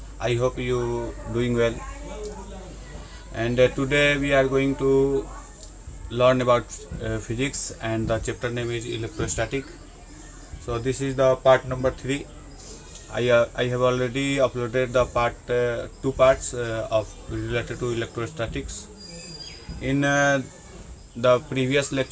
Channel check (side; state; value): both; identical; correlation 1.00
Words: I hope you doing well and today we are going to learn about physics and the chapter name is electrostatic. So this is the part number 3. I have already uploaded the two parts of related to electrostatics. In the previous